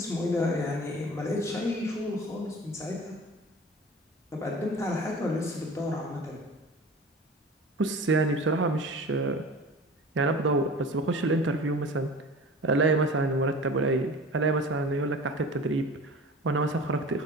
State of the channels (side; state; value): both; normal; correlation 0.39